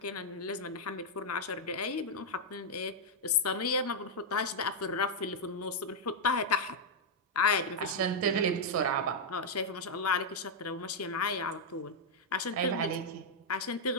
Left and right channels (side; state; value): both; normal; correlation -0.03